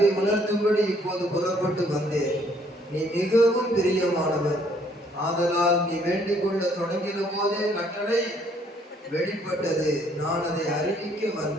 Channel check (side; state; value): both; normal; correlation 0.64